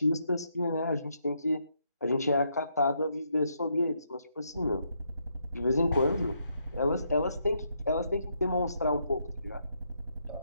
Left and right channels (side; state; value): both; inverted; correlation -0.77